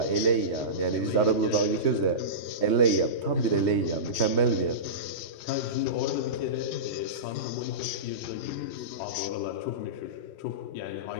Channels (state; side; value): late; right; 3.2 ms